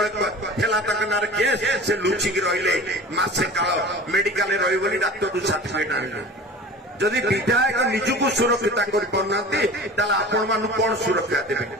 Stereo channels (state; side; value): normal; both; correlation 0.38